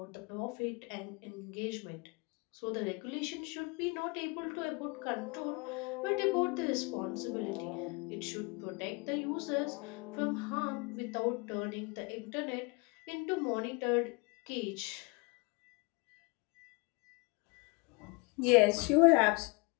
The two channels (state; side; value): quieter; right; 29.3 dB